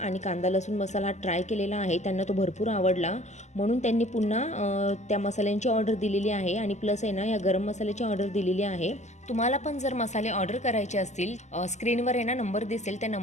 कांदा लसूण मसाला ट्राय केलेला आहे. त्यांना तो भरपूर आवडला, म्हणून त्यांनी पुन्हा त्या मसाल्यांची ऑर्डर दिलेली आहे. आणि प्लस आहे ना या गरम मसाल्याची ऑर्डर दिलेली आहे. तुम्हाला पण जर मसाले ऑर्डर करायचे असतील स्क्रीनवर आहे ना नंबर दिसेल, त्या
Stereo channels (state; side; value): late; right; 0.33 ms